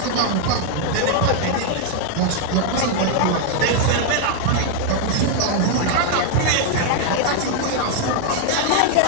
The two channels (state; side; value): different; both; correlation 0.00